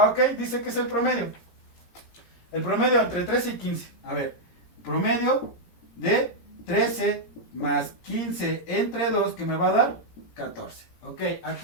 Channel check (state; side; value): late; right; 17 ms